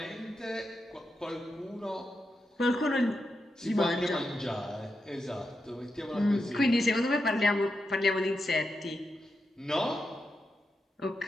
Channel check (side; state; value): both; normal; correlation 0.87